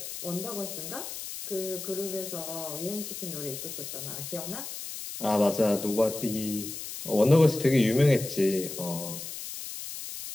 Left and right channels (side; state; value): left; noise; hiss, 8 dB below the sound